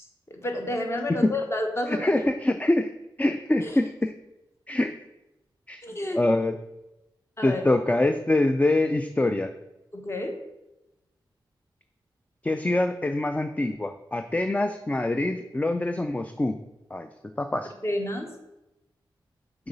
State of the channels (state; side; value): normal; both; correlation 0.93